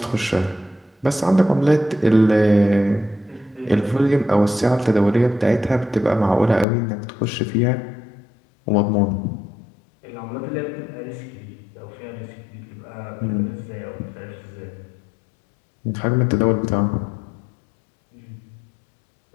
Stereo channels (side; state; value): right; drops out; at 6.7 s